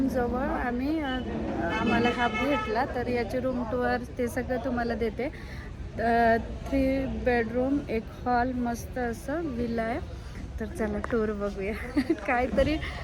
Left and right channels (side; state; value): both; identical; correlation 1.00